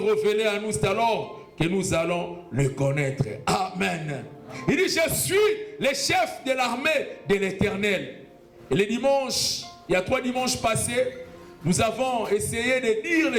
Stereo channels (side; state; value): both; identical; correlation 1.00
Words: à nous, c'est alors que nous allons le connaître. Amen. Il dit, je suis le chef de l'armée de l'Éternel. Et les dimanches, il y a 3 dimanches passés, nous avons essayé de dire